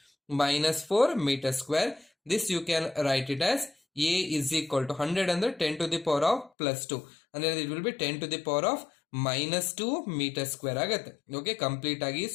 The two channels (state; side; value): drops out; right; at 6.5 s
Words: meter square. This you can write it as A is equal to 100 under 10 to the power of plus 2. And then it will be 10 to the power of minus 2 meter square ಆಗುತ್ತೆ. Okay, complete ಆಗಿ